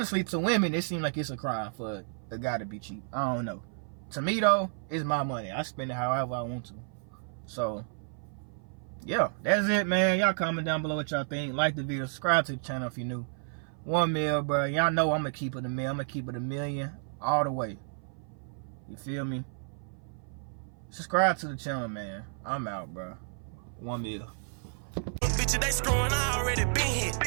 to women, it seems like it's a crime for a guy to be cheap. I don't know. To me, though, it's my money. I spend it however I want to. So, yeah, that's it, man. Y'all comment down below what y'all think. Like the video. Subscribe to the channel if you're new. 1 mil, bro. Y'all know I'm going to keep it a mil. I'm going to keep it a million all the way. You feel me? Subscribe to the channel, man. I'm out, bro. 1 mil. Bitches, they screwing, I already been hit.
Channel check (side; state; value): left; silent; 55 dB below the other